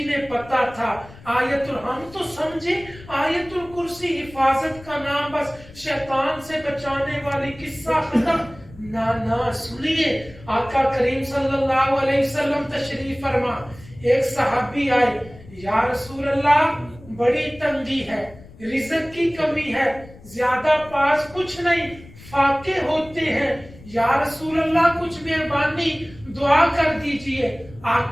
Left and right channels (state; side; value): noise; left; rumble, 20 dB below the sound